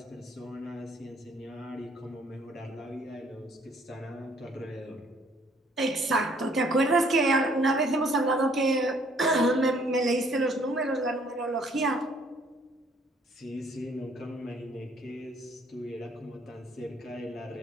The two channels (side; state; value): both; normal; correlation 0.62